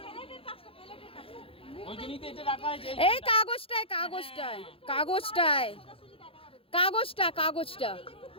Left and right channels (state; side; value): late; right; 0.27 ms